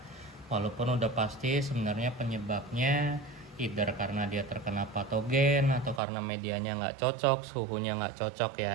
Walaupun udah pasti sebenarnya penyebabnya either karena dia terkena patogen atau karena medianya nggak cocok, suhunya nggak cocok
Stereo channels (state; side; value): drops out; left; at 6.0 s